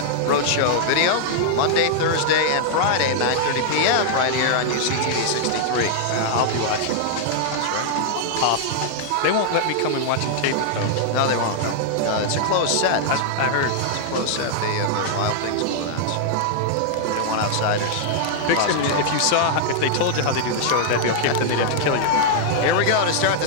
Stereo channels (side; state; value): both; different; correlation -0.01